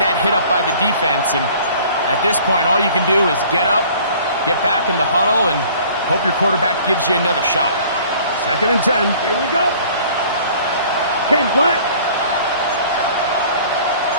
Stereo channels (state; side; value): inverted; both; correlation -0.51